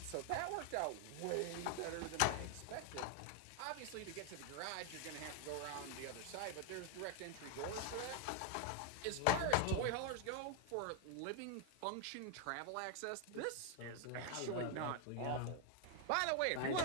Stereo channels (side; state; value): both; different; correlation 0.01